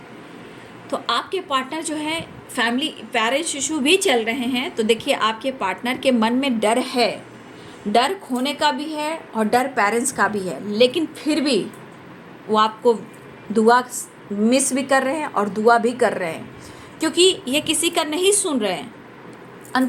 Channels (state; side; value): identical; both; correlation 1.00